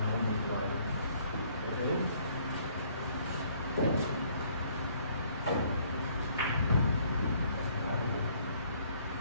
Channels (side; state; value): both; inverted; correlation -0.63